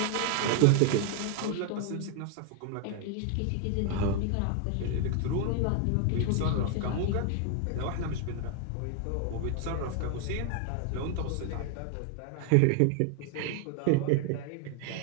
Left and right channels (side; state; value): both; different; correlation 0.00